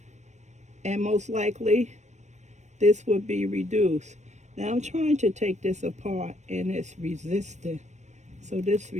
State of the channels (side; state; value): left; late; 0.34 ms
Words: and most likely this will be reduced. Now I'm trying to take this apart, and it's resistant. So this